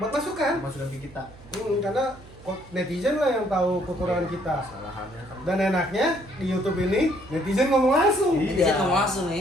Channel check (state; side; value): noise; right; hum, 21 dB below the sound